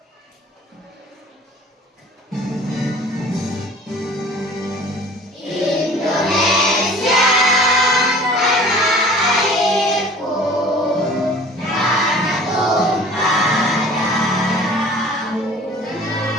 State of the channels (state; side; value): normal; both; correlation 0.47